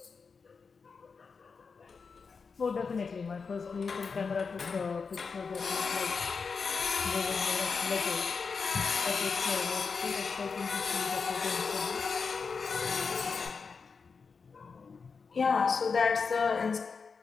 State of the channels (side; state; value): right; quieter; 5.2 dB